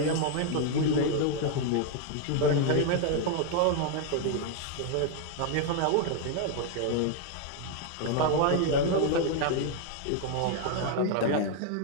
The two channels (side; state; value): both; different; correlation 0.00